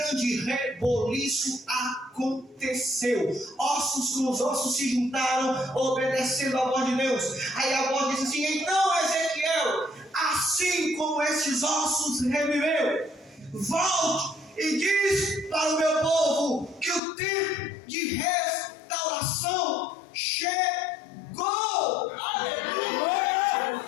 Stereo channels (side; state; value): right; drops out; at 17.0 s